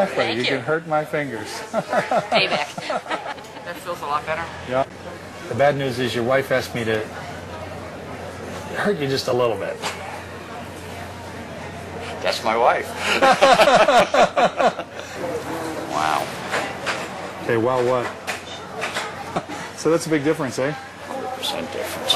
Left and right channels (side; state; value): both; identical; correlation 1.00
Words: Thank You can hurt my fingers. Payback. That feels a lot better. Yeah. The bad news is your wife asked me to hurt you just a little bit. That's my wife. Wow. Okay, well, what? So that's a big difference, eh? 100% difference.